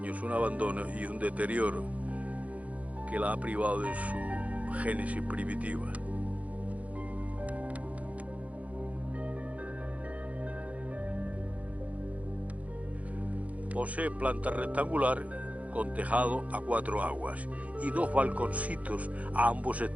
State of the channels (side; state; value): left; late; 0.067 ms